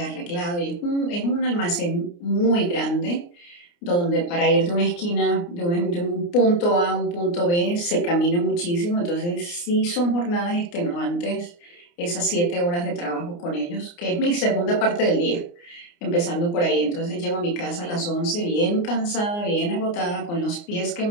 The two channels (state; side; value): late; right; 29 ms